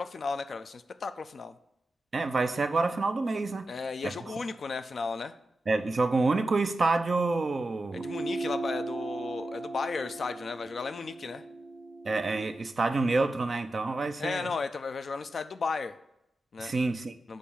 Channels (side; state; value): both; normal; correlation 0.91